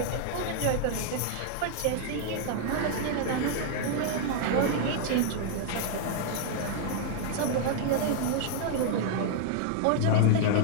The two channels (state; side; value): different; both; correlation 0.00